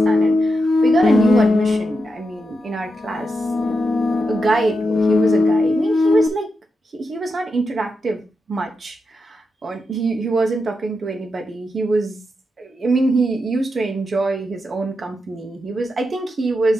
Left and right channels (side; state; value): both; normal; correlation 0.86